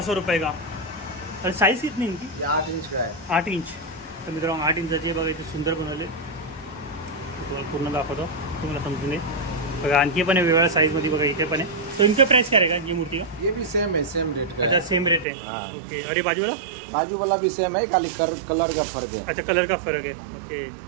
रुपये का और साइज कितनी इनकी ये 8 इंच का है 8 इंच तर मित्रांनो 8 इंचाची बघा इथे सुंदर बनवले तुम्हाला पूर्ण दाखवतो तुम्हाला समजून येईल बघा आणखी पण आहे वेगवेगळ्या साईजमध्ये बघा इथे पण आहे तो इनका प्राइस क्या रहेगा ये मूर्ति का ये भी सेम है सेम रेट का अच्छा सेम रेट है हाँ। ओके और ये बाजू वाला बाजू वाला भी सेम है खाली कलर का फर्क है अच्छा कलर का फरक आहे ओके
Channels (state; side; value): drops out; left; at 15.2 s